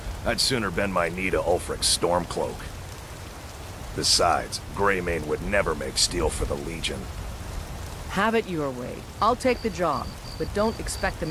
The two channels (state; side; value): identical; both; correlation 1.00